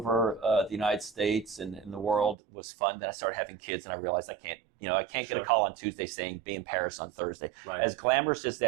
the United States and the world was fun. Then I started having kids, and I realized I can't get a call on Tuesday saying be in Paris on Thursday. Right. As glamorous as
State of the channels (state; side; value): drops out; left; at 2.4 s